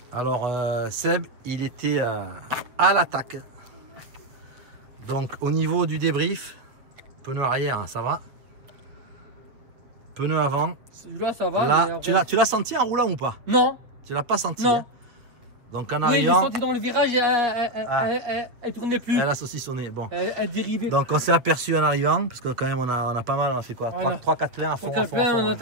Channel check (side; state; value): left; late; 7.6 ms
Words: Alors Seb, il était à l'attaque. Donc au niveau du débrief, pneu arrière, ça va. Pneu avant. Celui-là, ça va. Là, tu l'as senti en roulant ou pas? Non. Tu l'as pas senti? Non. Hein. Donc en arrivant. Oui, je l'ai arrivant, senti dans le virage, elle tournait plus. Elle a saucissonné. Bon. Elle dérivait. Donc on s'est aperçu en arrivant, parce que quand même on a pas mal, on a fait quoi? 3-4 pleins à fond. 3-4 pleins, on a